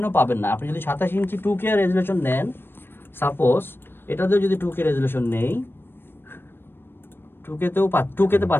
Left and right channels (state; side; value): late; right; 0.10 ms